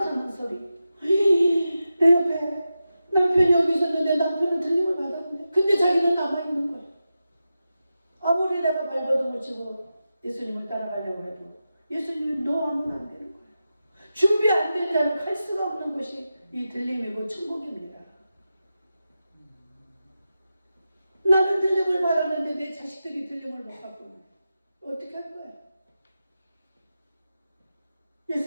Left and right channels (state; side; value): inverted; both; correlation -0.91